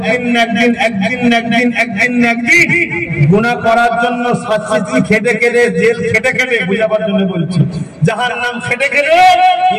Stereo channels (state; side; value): identical; both; correlation 1.00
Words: গুনাহ করার জন্য শাস্তি খেটে খেটে, জেল খেটে খেটে, বুঝাবার জন্য বলছি, জাহান্নাম খেটে খেটে